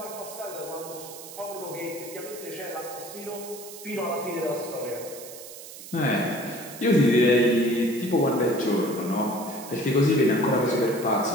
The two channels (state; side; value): noise; right; hiss, 14 dB below the sound